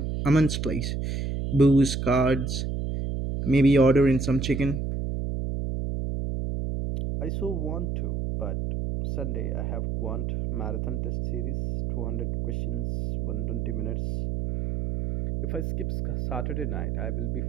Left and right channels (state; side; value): noise; right; hum, 2 dB below the sound